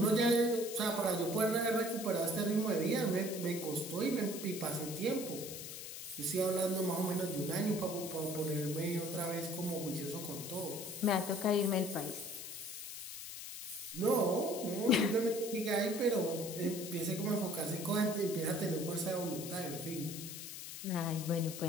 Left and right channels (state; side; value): noise; left; hiss, 9 dB below the sound